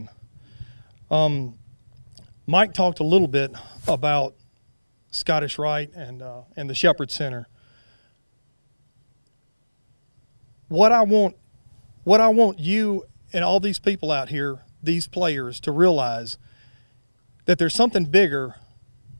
Mike talked a little bit about Scottish Rite and the Shepherd Center. What I want you and all these people out here, these players, to realize that there's something bigger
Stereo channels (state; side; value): inverted; both; correlation -1.00